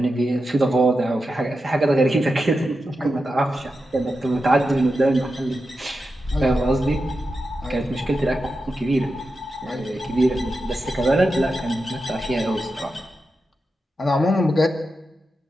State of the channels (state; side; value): normal; both; correlation 0.89